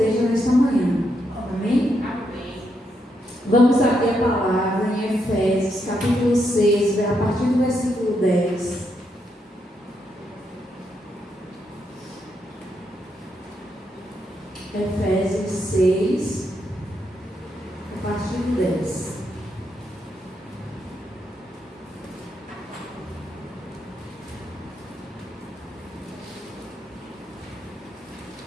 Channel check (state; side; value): normal; both; correlation 0.80